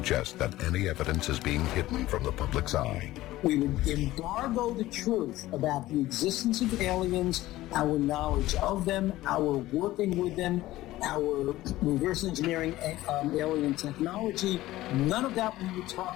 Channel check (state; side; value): quieter; right; 16.4 dB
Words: that any evidence is being hidden from the public's eye. We would embargo the truth about the existence of aliens, our knowledge of them, our working with them, our reverse engineering alien technology. None of that we would talk